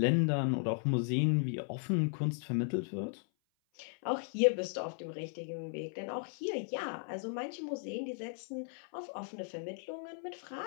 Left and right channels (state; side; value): silent; right; 54 dB below the other